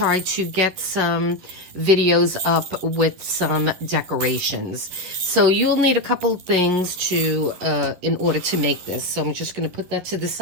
to get some videos up with some decorations. So you'll need a couple things to in order to make this. So I'm just going to put that to the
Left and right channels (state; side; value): late; left; 11 ms